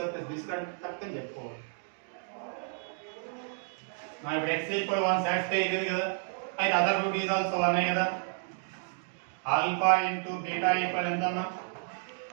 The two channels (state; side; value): silent; left; 57 dB below the other